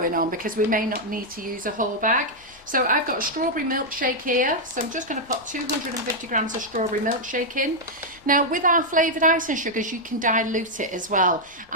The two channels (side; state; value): both; normal; correlation -0.03